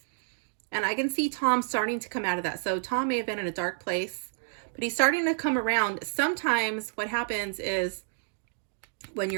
And I can see Tom starting to come out of that. So Tom may have been in a dark place, but he's starting to come around. Sometimes what happens is when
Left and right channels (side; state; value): left; silent; digital silence